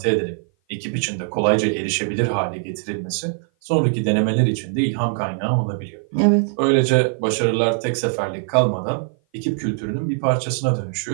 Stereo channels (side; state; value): left; silent; 56 dB below the other